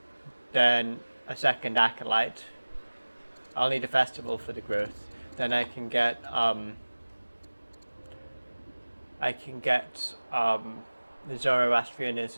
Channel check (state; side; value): inverted; both; correlation -1.00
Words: then a second acolyte, I'll need a festival for the growth. Then I can get the